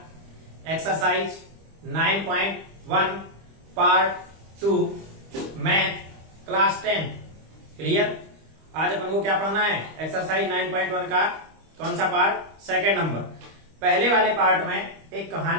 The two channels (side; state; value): left; late; 25 ms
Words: exercise 9.1 part 2 math class 10 clear. आज अपन को क्या पढ़ना है? एक्सरसाइज 9.1 का कौन सा पार्ट? Second number. पहले वाले पार्ट में एक